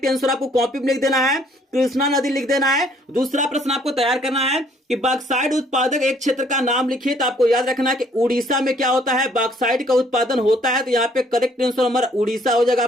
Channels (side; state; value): both; normal; correlation 0.62